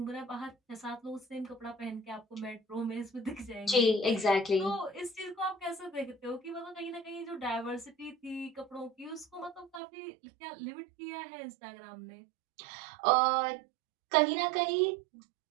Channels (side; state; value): left; drops out; at 9.8 s